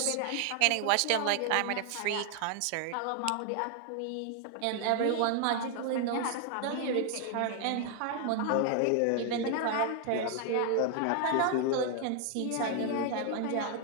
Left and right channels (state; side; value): different; both; correlation 0.00